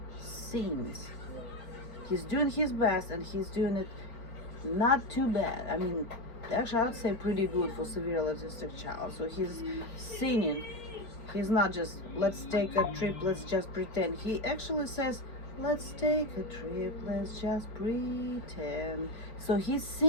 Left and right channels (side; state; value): right; late; 4.9 ms